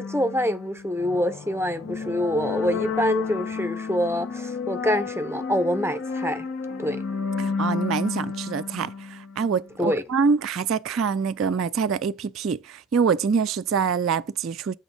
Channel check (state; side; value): normal; both; correlation 0.54